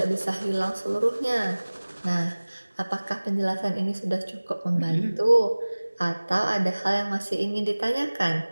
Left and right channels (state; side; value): inverted; both; correlation -1.00